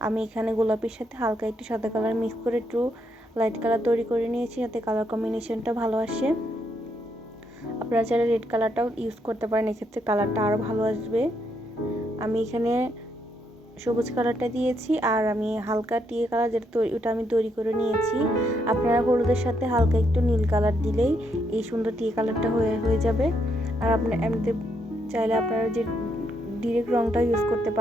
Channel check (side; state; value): both; normal; correlation 0.76